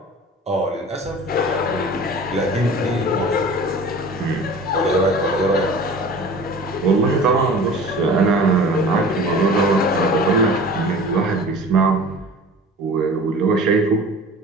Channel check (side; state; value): both; normal; correlation 0.41